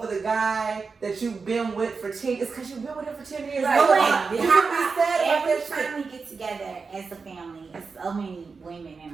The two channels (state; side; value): quieter; left; 4.8 dB